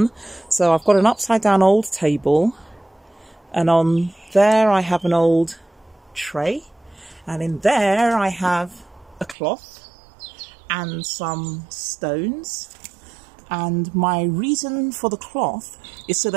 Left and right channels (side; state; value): left; drops out; at 9.3 s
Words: So I've got an upside down old table, and on there I have an old tray, and in there I have a cloth and some stones. And my reason for the cloth is so